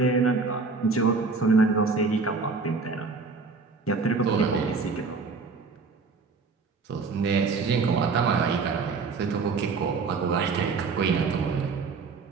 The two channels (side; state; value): left; quieter; 4.5 dB